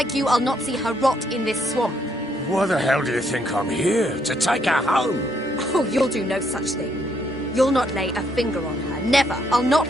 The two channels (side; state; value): both; normal; correlation 0.72